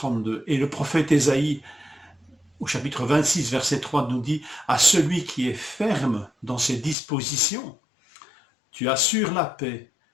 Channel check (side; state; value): right; drops out; at 7.0 s